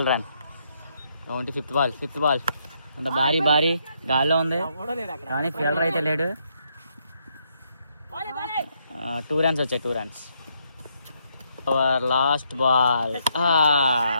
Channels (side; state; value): both; inverted; correlation -0.75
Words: run. 25th ball అంత భారీ గాల్లో ఉంది కానీ ఫీల్డర్ అయితే లేడు. 2 runs వచ్చాయి. 2 runs. Our last ball.